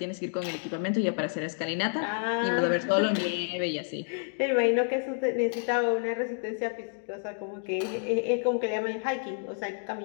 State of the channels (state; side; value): silent; right; 58 dB below the other